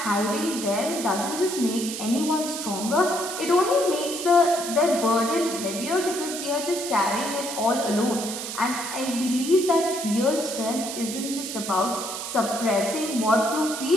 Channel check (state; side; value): noise; right; hiss, 7 dB below the sound